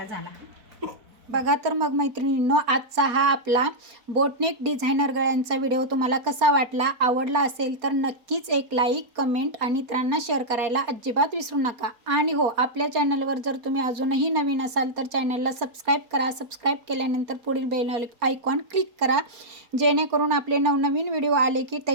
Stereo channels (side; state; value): left; late; 4.3 ms